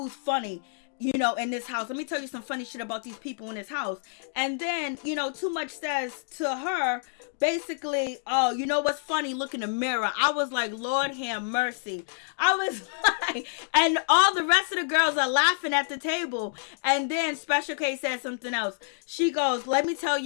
funny. In this house. Let me tell you some funny shit about these people in this house. And then, Too Much says to her, basically, oh, you know what's funny? Look in the mirror. I was like, Lord have mercy. I was like, and all the rest of the girls are laughing at the table. And then Special K says something else. She goes, let me tell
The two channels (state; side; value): silent; right; digital silence